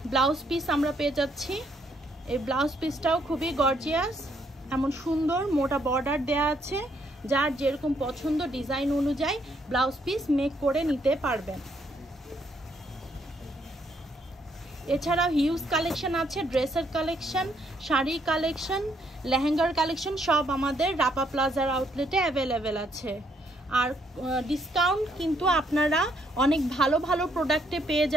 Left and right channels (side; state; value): both; normal; correlation 0.71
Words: ব্লাউজ পিস আমরা পেয়ে যাচ্ছি। এই ব্লাউজ পিসটাও খুবই গর্জিয়াস, এমন সুন্দর মোটা বর্ডার দেয়া আছে, যার যেরকম পছন্দ ডিজাইন অনুযায়ী ব্লাউজ পিস মেক করে নিতে পারবেন। এছাড়াও হিউজ কালেকশন আছে, ড্রেসের কালেকশন, শাড়ি কালেকশন, লেহেঙ্গার কালেকশন, সব আমাদের রাপা প্লাজার আউটলেটে অ্যাভেলেবেল আছে। আর ডিসকাউন্ট কিন্তু আপনারা অনেক ভালো প্রোডাক্টে পেয়ে